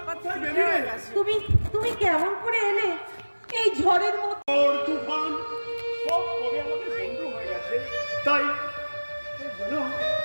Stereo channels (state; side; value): inverted; both; correlation -1.00